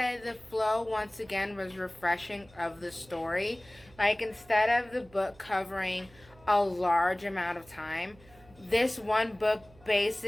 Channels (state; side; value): noise; right; hum, 25 dB below the sound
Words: the flow, once again, was refreshing of the story. Like, instead of the book covering a large amount of time, this one book